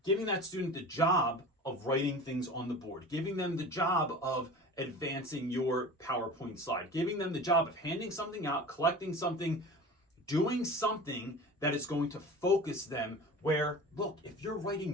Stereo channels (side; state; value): both; normal; correlation 0.36